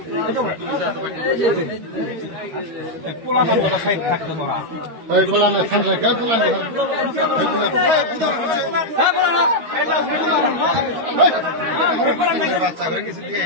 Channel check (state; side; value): late; left; 13 ms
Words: বাচ্চা কৰে কিছু দিয়ে